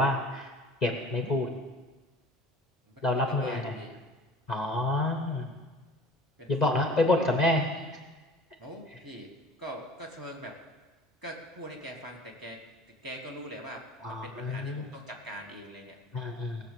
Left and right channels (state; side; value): normal; both; correlation 0.45